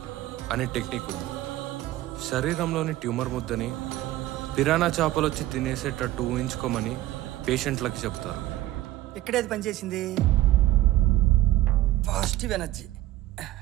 అనే టెక్నిక్ ఉంది. శరీరంలోని ట్యూమర్ ముద్దని పిరానా చేపలు వచ్చి తినేసేటట్టు ఊహించుకోమని పేషెంట్లకి చెప్తారు. ఇక్కడేది పనిచేసింది? Positive energy.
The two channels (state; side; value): quieter; left; 15.6 dB